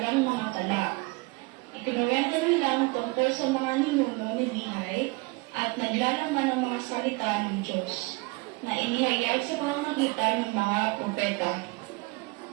mga tala. Ikinuwento nila tungkol sa mga ninuno ni Bihay at naglalaman ng mga salita ng Diyos na inihayag sa pamamagitan ng mga propeta.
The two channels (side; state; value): left; quieter; 25.9 dB